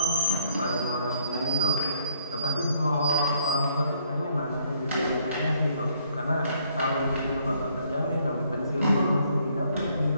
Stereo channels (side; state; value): both; inverted; correlation -0.66